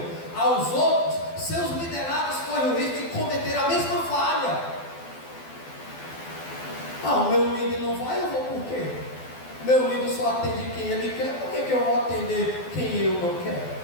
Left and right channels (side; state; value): right; late; 12 ms